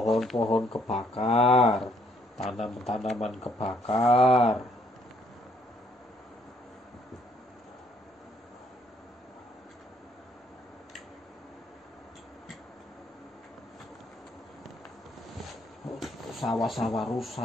kebakar, tanaman-tanaman kebakar. Sawah-sawah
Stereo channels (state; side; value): normal; both; correlation 0.67